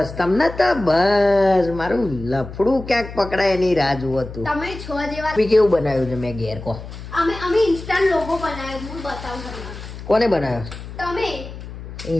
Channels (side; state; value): left; noise; hum, 12 dB below the sound